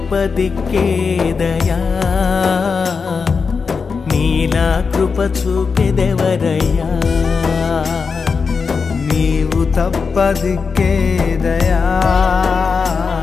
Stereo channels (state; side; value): quieter; right; 5.2 dB